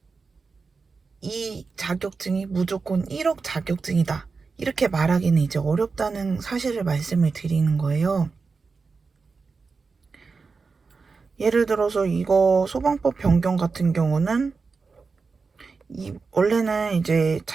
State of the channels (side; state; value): left; quieter; 4.6 dB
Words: 이 자격증이 무조건 1억 자격증이다. 이렇게 말하기는 이제 어렵다는 사실을 말씀을 드리는 거예요. 예를 들어서 이거 소방법 변경 같은 경우는 원래는 이제